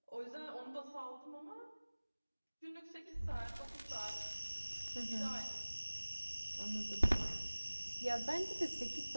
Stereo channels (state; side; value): inverted; both; correlation -1.00